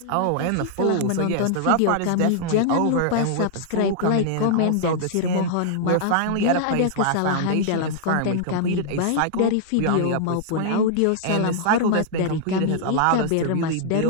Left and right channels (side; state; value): both; different; correlation -0.01